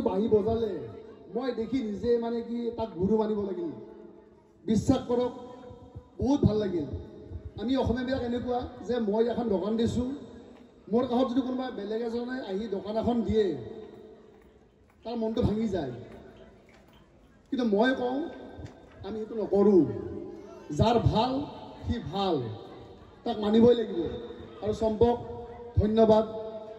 বাঁহী বজালে মই দেখি নিজে মানে কি তাক গুৰু মানিব লাগিল। বিশ্বাস কৰক বহুত ভাল লাগিল। আমি অসমীয়াবিলাক এনেকুৱা যে মই এখন দোকান দিছোঁ, মোৰ কাষত যদি কোনোবা বেলেগ এজনে আহি দোকান এখন দিয়ে তাৰ মনটো ভাঙি যায়, কিন্তু মই কওঁ আমি সেইটো নকৰোঁ। যাৰ ভাল সি ভাল, তাক মানিবই লাগিব। আৰু চম্পক ধন্যবাদ।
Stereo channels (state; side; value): identical; both; correlation 1.00